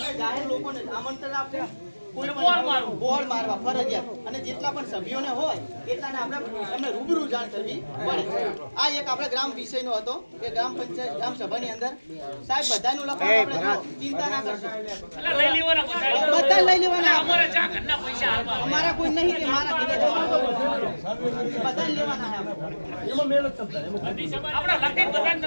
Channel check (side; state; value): both; inverted; correlation -1.00